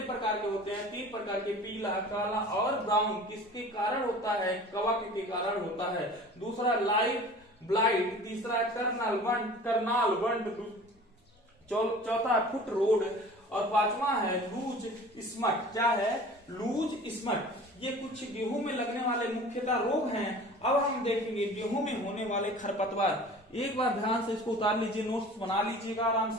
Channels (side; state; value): both; normal; correlation 0.43